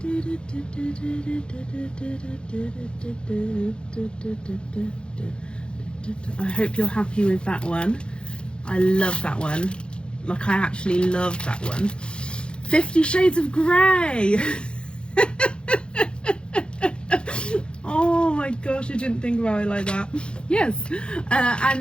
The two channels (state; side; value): late; right; 0.054 ms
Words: I hope you're happy with that one. I love that one. Like, I actually love that one. 50 Shades of Grey. Oh my gosh, I didn't think about it like that. Yes.